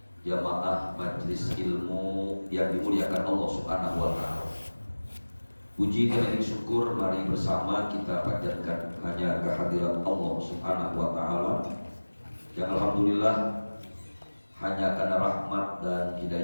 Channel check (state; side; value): inverted; both; correlation -1.00